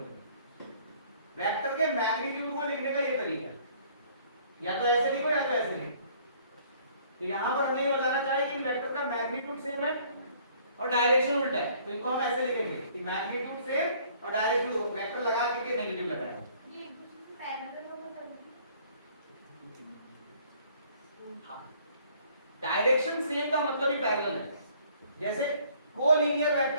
वेक्टर के मैग्नीट्यूड को लिखने का ये तरीका है, या तो ऐसे लिखो या तो ऐसे लिखो। तो यहां पर हमें ये बताना चाहिए कि वेक्टर का मैग्नीट्यूड सेम है और डायरेक्शन उल्टा है, तो इनको हम ऐसे लिखेंगे कि मैग्नीट्यूड सेम और डायरेक्शन वेक्टर लगा के नेगेटिव लगाया। ये एक दूसरे से पैरेलल होगा तभी। डायरेक्शन सेम का मतलब ही पैरेलल है। जैसे कोलिनियर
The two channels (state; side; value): inverted; both; correlation -0.58